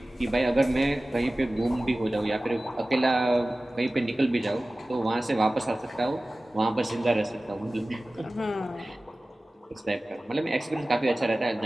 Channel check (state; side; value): normal; both; correlation 0.97